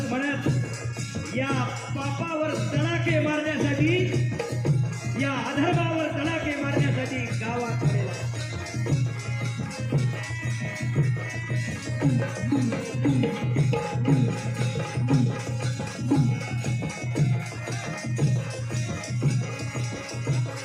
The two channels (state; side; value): identical; both; correlation 1.00